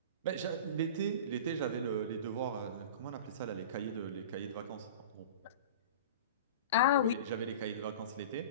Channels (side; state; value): both; inverted; correlation -0.34